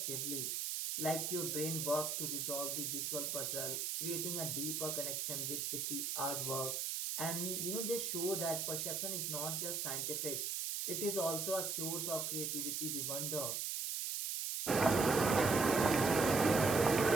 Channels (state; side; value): noise; right; hiss, 1 dB below the sound